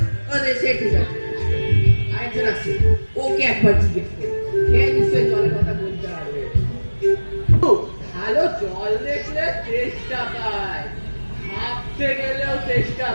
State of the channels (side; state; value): both; inverted; correlation -1.00